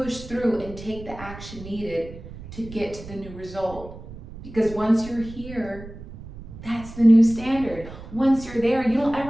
through and take the action needed to get to the new result. Because once you're here, that's the new standard. Once you're there, you don't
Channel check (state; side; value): noise; right; rumble, 14 dB below the sound